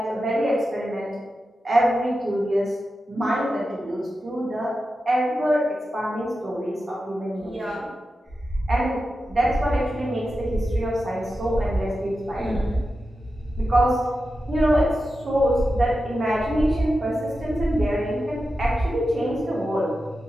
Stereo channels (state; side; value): normal; both; correlation 0.91